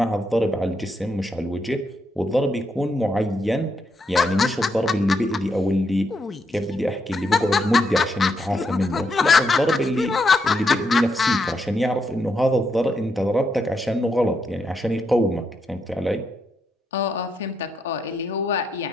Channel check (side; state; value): both; normal; correlation 0.80